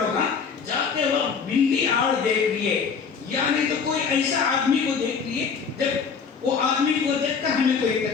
جاتے وقت بلی آڑ دیکھ لیے، یعنی تو کوئی ایسا آدمی کو دیکھ لیے، جب وہ آدمی کو دیکھ کر ہمیں کوئی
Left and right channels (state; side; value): quieter; right; 5.9 dB